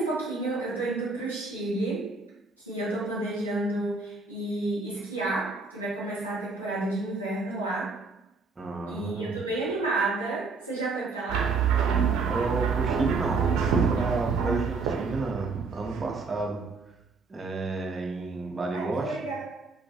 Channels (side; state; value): left; quieter; 4.0 dB